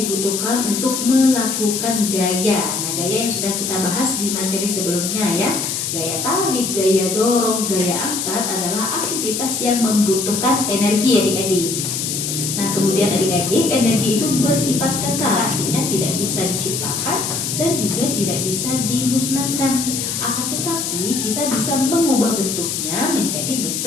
untuk melakukan gaya. Nah, gaya yang sudah kita bahas di materi sebelumnya ya. Gaya tarik, gaya dorong, gaya angkat adalah aktivitas yang membutuhkan energi adik-adik. Nah, kemudian adik-adik, energi itu bersifat kekal, artinya tidak bisa diciptakan dan juga tidak bisa dimusnahkan. Akan tetapi kita bisa mengubah bentuknya menjadi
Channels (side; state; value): left; noise; hiss, 2 dB below the sound